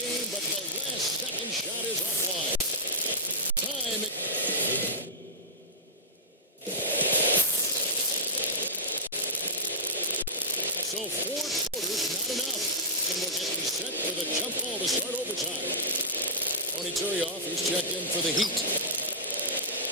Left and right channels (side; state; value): both; normal; correlation -0.17